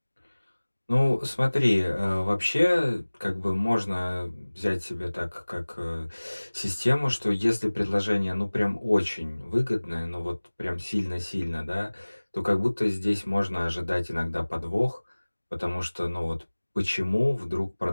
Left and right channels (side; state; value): both; inverted; correlation -1.00